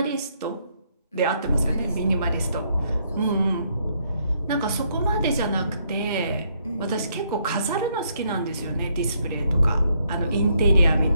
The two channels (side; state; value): both; inverted; correlation -0.73